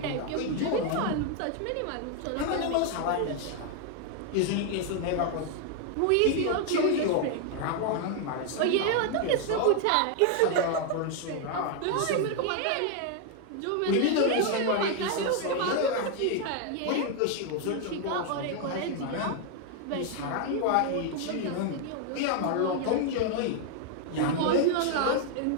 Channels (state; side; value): different; both; correlation 0.00